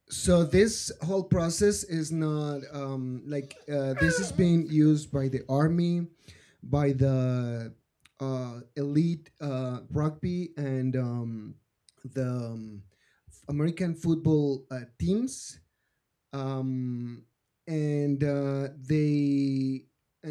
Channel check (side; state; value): both; identical; correlation 1.00